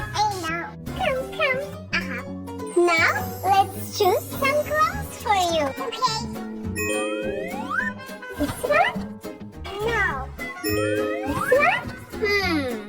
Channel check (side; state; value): both; identical; correlation 1.00